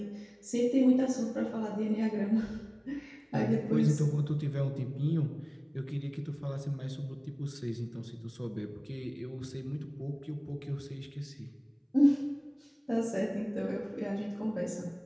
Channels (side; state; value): both; identical; correlation 1.00